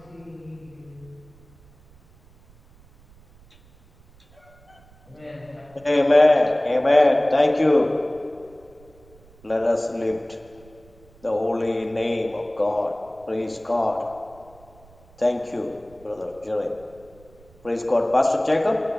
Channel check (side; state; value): right; noise; rumble, 27 dB below the sound